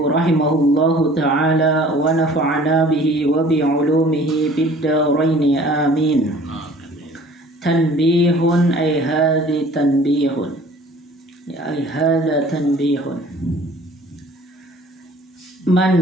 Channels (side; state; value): both; normal; correlation 0.50